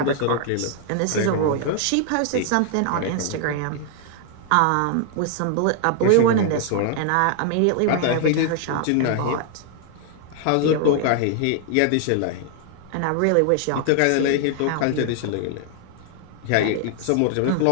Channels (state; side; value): different; both; correlation 0.00